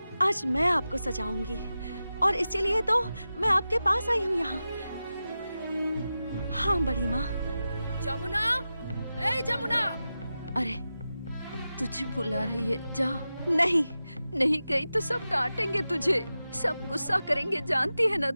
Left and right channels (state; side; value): inverted; both; correlation -0.93